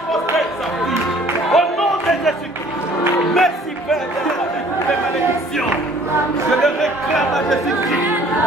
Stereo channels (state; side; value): normal; both; correlation 0.55